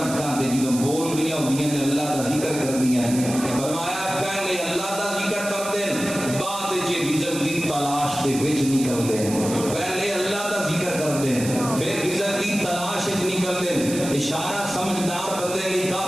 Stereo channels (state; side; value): noise; right; hiss, 9 dB below the sound